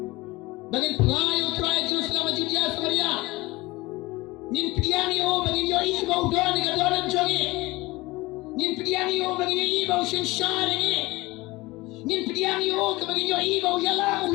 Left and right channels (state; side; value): quieter; right; 21.3 dB